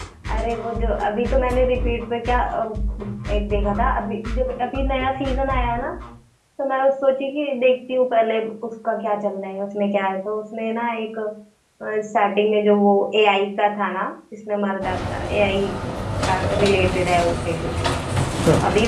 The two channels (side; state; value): both; identical; correlation 1.00